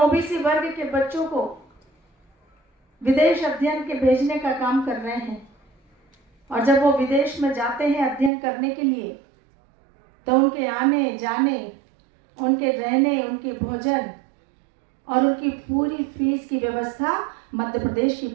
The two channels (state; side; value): drops out; left; at 8.3 s